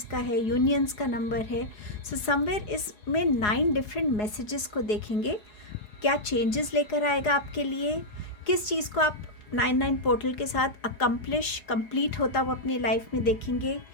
का है, यूनियंस का नंबर है। समवेयर इसमें 9 डिफरेंट मैसेजेस को देखेंगे, क्या चेंजेस लेकर आएगा आपके लिए, किस चीज़ को आप 99 पोर्टल के साथ कंप्लीट होता हुआ अपनी लाइफ में देखेंगे,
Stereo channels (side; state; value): right; late; 4.8 ms